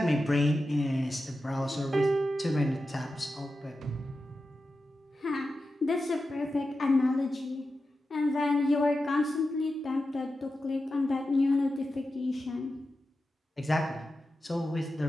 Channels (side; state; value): both; normal; correlation 0.91